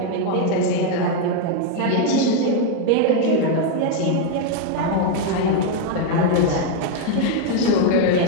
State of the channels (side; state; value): both; different; correlation 0.00